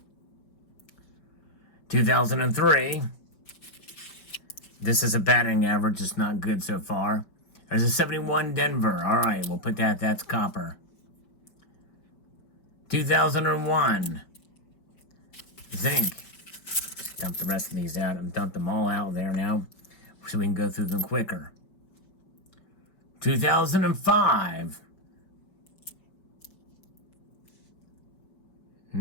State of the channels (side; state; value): right; late; 5.2 ms